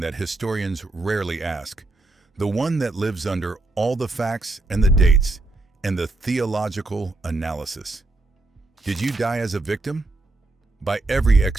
that historians rarely ask, the one that lives under all the facts and the dates and the theological analysis. Did you die as a victim? By every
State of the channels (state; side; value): quieter; left; 3.1 dB